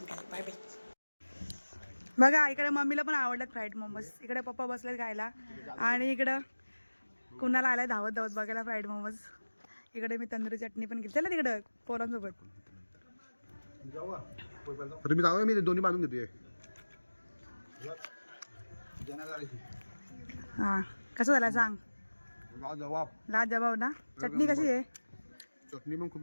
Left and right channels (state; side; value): inverted; both; correlation -1.00